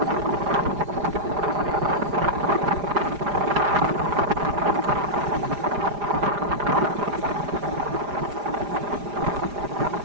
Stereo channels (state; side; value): late; left; 4.9 ms